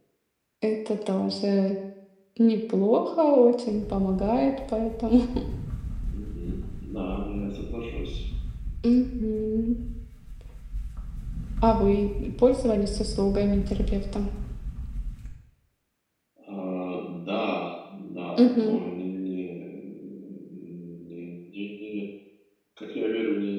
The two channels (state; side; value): identical; both; correlation 1.00